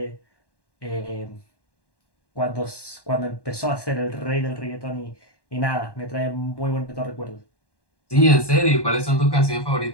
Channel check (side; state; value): right; late; 1.1 ms